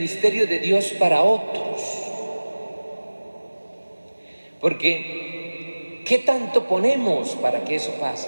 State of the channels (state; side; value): inverted; both; correlation -1.00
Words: de Dios para otros? Porque ¿qué tanto ponemos para que eso